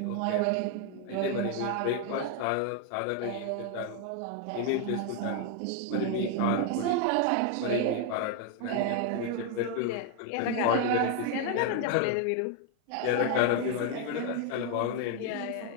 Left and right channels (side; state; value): both; different; correlation 0.00